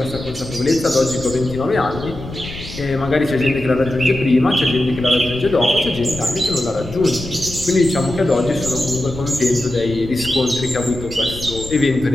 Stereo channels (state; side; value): noise; left; rumble, 12 dB below the sound